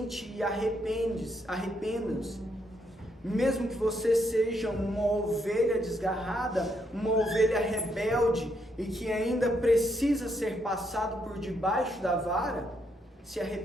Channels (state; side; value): normal; both; correlation 0.76